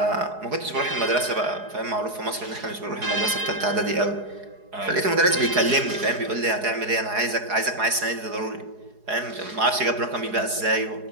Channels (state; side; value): late; left; 4.8 ms